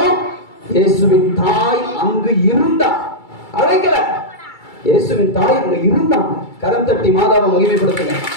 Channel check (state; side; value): late; right; 2.3 ms